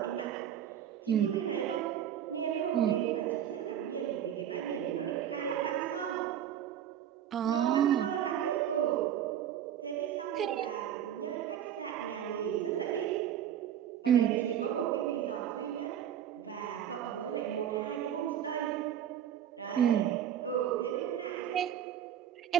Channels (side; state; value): left; quieter; 10.0 dB